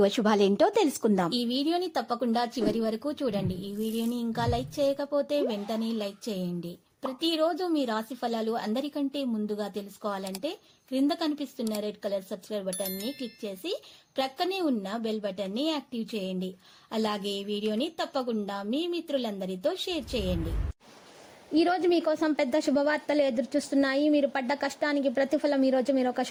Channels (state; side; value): identical; both; correlation 1.00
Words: అశుభాలేంటో తెలుసుకుందాం. ఈ వీడియోని తప్పకుండా చివరి వరకు చూడండి. ఈ వీడియోని ఇంకా లైక్ చేయకపోతే వెంటనే లైక్ చేయండి. ప్రతిరోజు మీ రాశి ఫలాలు అందరికంటే ముందుగా తెలుసుకోవాలంటే క్రింద కనిపిస్తున్న రెడ్ కలర్ సబ్స్క్రైబ్ బటన్ ని క్లిక్ చేసి ప్రక్కనే ఉన్న బెల్ బటన్ ని యాక్టివ్ చేయండి. అలాగే ఈ వీడియోని తప్పకుండా మీ మిత్రులందరితో షేర్ చేయండి. ఈ రోజు మీకోసం పెద్ద శుభవార్తలు ఎదురు చూస్తున్నాయి. మీరు పడ్డ కష్టానికి ప్రతిఫలం ఈ రోజు మీరు ఒక